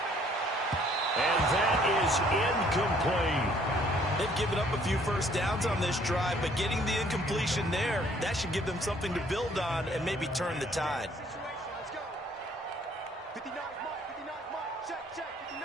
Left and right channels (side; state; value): both; normal; correlation 0.61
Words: And that is incomplete. They've given up a few first downs on this drive, but getting the incompletion there, that should give them something to build on and maybe turn the tide. Let's go. 59, Mike. Check.